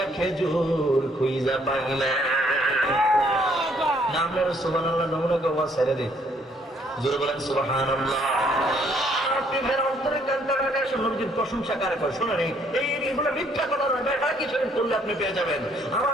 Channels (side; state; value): both; normal; correlation 0.66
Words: খেজুর খুঁজা পাইলেন। নাম নেন সুবহানাল্লাহ, নমুনা গো ছেড়ে দিন, জোরে বলেন সুবহানাল্লাহ। প্রশংসা কারে করে শোনেন, এইগুলো মিথ্যা কথা নয়, বেটা কিছু করলে আপনি পেয়ে যাবেন।